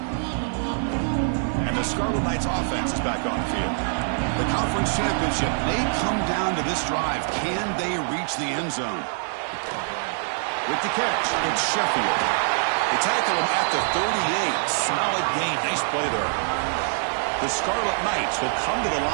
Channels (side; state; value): left; silent; 62 dB below the other